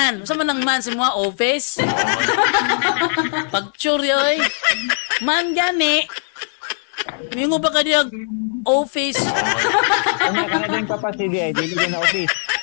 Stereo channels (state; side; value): silent; right; digital silence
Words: saan man ang man si mga office? Pagtsure yoy. Man gani. Mingo ba ka diya office? Kanya ka na din papasi di ay, dili na office.